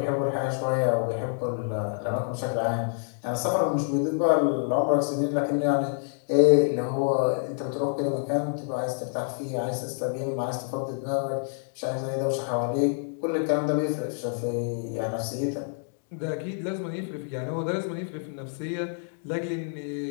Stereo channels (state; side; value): silent; right; 60 dB below the other